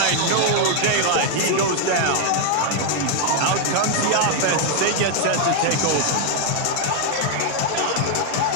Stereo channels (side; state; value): both; different; correlation 0.00